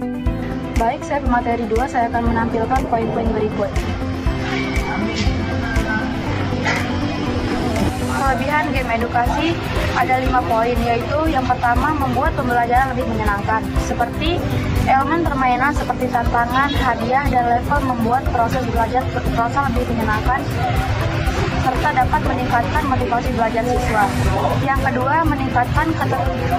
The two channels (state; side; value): identical; both; correlation 1.00